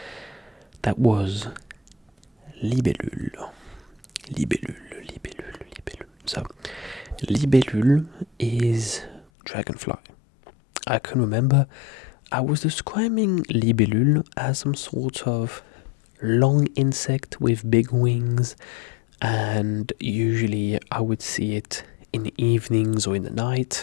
That was libellule. Libellule. So, libellule is dragonfly. I can remember I was describing libellule as some sort of long insect with big wings, and usually I would see it in the evenings or in the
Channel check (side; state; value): right; drops out; at 9.2 s